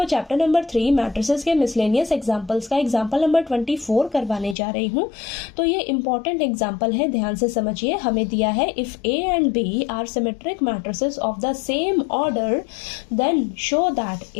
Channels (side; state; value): right; drops out; at 4.5 s